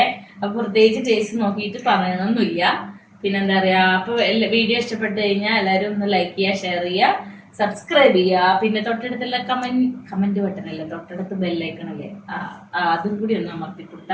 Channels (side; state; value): both; identical; correlation 1.00